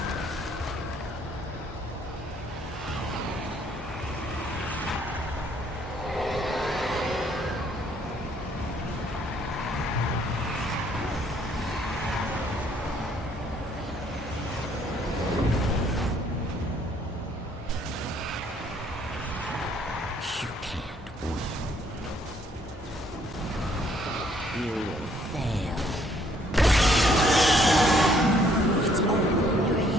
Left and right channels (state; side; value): normal; both; correlation 0.65